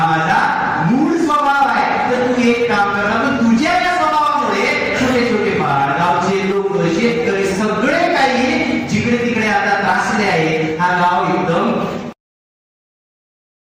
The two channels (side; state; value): both; identical; correlation 1.00